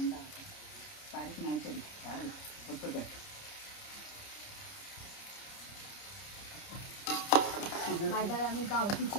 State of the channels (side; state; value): right; late; 30 ms